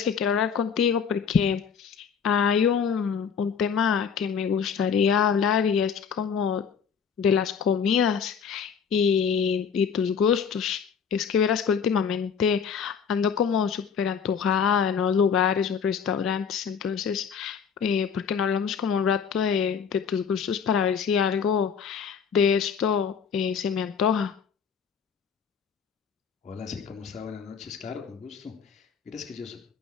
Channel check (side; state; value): right; quieter; 6.8 dB